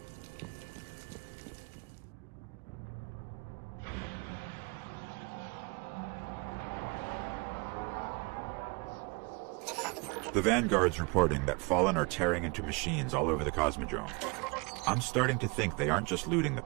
The Vanguard's reporting that Fallen are tearing into machines all over the Cosmodrome. I'm starting to think they aren't just looting the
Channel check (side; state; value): left; quieter; 29.2 dB